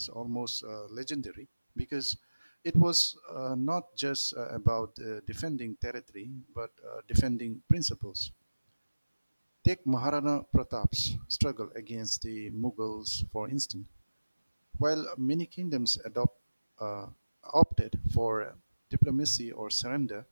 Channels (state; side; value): inverted; both; correlation -1.00